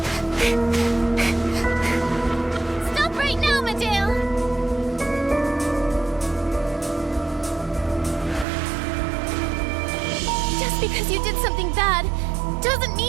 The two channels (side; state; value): left; drops out; at 8.5 s